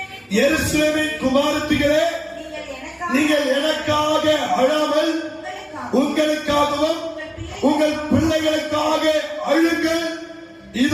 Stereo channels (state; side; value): identical; both; correlation 1.00